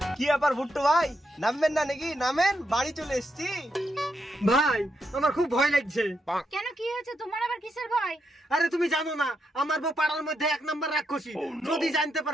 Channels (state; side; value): normal; both; correlation 0.82